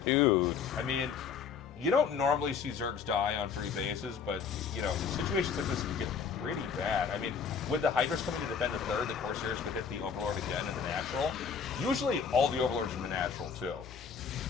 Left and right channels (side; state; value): right; quieter; 6.4 dB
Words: Dude. I mean, you don't normally see Zergs die on 3 bases, but, you know, situations like this can get pretty bad. I mean, with the Hydras coming to defend the 3rd, the Corsairs could hit the Overlord again in the natural. Usually, all the Overlords in the natural, too.